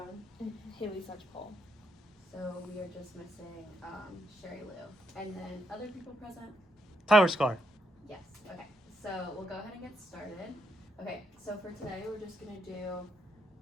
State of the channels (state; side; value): normal; both; correlation 0.78